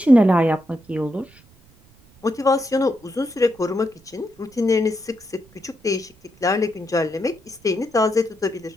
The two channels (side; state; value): right; noise; rumble, 28 dB below the sound